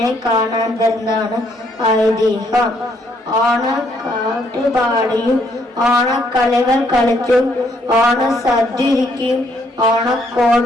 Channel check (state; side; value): normal; both; correlation 0.70